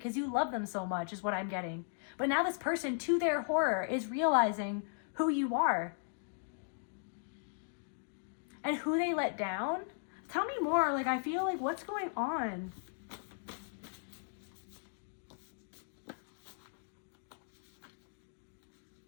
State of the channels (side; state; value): right; silent; digital silence